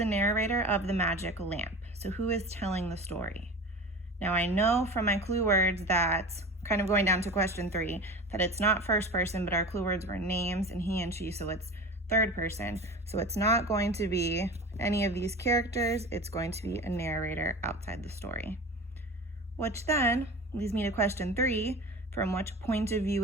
narrator of the magic lamp? So who is telling the story? Now I know from my clue words that, kind of going down to question 3, that it's not first person, but our clue words were names and he and she, so it's third person. So it's not going to be any of these characters, it's going to be a narrator outside the story. Which then leads me to question 3, from which point of view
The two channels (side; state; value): both; normal; correlation 0.34